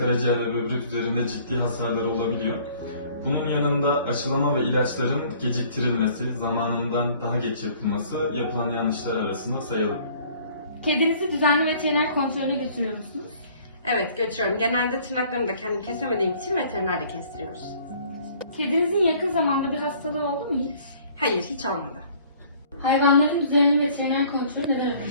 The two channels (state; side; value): inverted; both; correlation -0.55